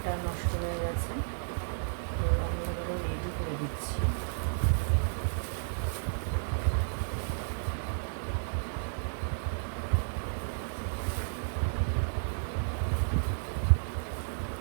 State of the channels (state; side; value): silent; left; 56 dB below the other